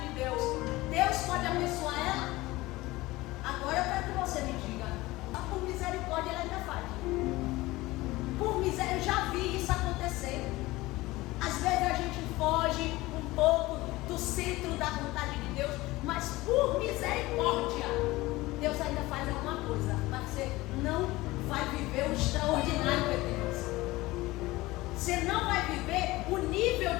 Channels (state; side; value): quieter; right; 19.5 dB